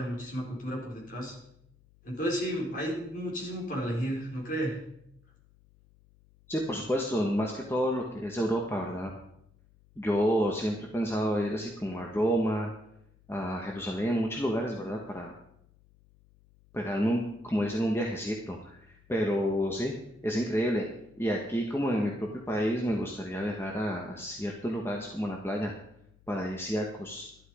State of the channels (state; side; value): noise; left; hum, 28 dB below the sound